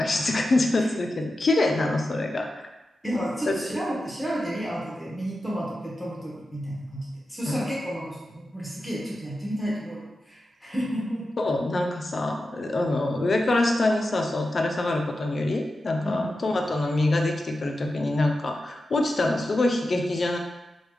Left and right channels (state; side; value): normal; both; correlation 0.91